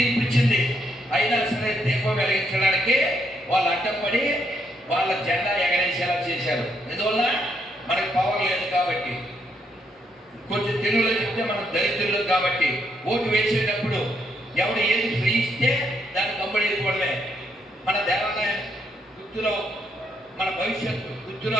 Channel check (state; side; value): normal; both; correlation 0.76